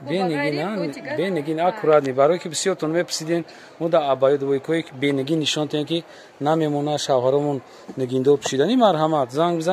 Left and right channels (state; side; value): identical; both; correlation 1.00